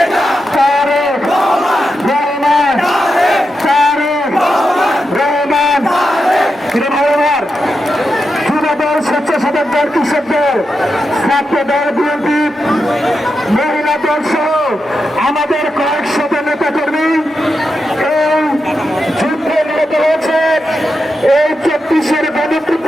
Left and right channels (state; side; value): normal; both; correlation 0.87